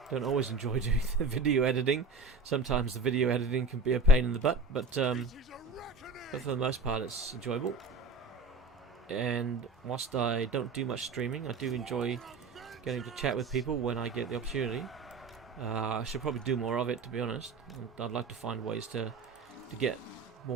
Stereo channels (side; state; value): left; quieter; 3.6 dB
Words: always enjoy doing the video editing. Sometimes the video editing can be a pain in the butt, but for the most part it's enjoyable. and whilst I don't do much streaming, I do enjoy getting to chat with people when I get the opportunity. I should probably do more of it, to be honest. I'd like to find ways to get